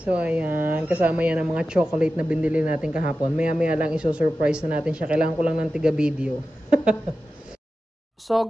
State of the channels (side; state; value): both; normal; correlation 0.93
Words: ayan. Kasama yan ang mga chocolate na binili natin kahapon. Maya-maya lang iso-surprise na natin siya. Kailangan ko lang ng tiga-video. So